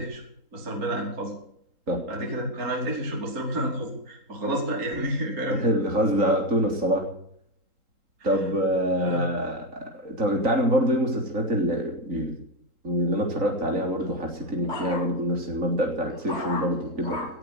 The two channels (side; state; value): left; late; 3.8 ms